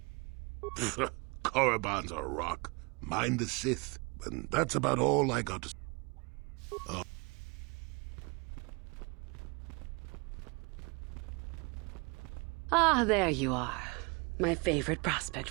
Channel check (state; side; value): quieter; left; 30.3 dB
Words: Korriban's a rock. Mind the Sith. And that's about all I got to say. Ah, there you are. My favorite prospect